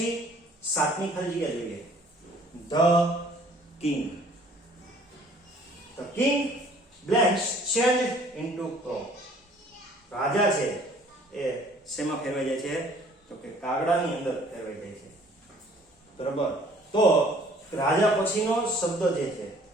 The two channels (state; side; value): normal; both; correlation 0.56